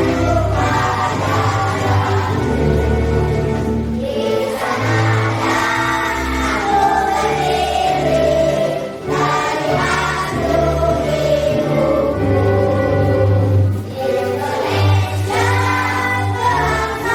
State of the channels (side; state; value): both; identical; correlation 1.00